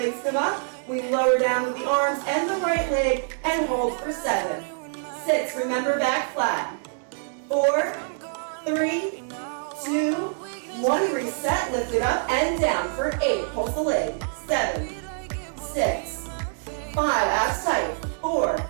come up. We lower down with the arms and the right leg and hold for 7, 6. Remember, back flat. 4, 3, 2, 1. Reset, lift it up and down for 8. Pulse the leg. 7, 6, 5, abs tight. 4,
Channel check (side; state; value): left; silent; 61 dB below the other